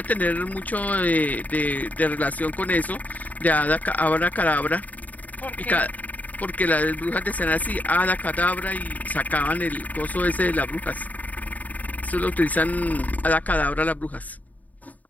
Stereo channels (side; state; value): right; late; 0.075 ms